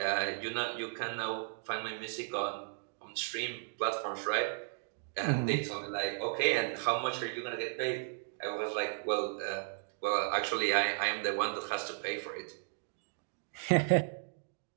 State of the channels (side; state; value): left; silent; digital silence